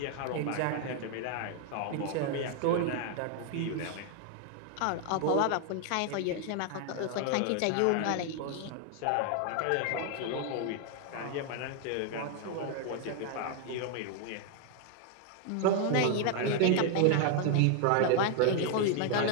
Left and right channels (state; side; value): different; both; correlation 0.00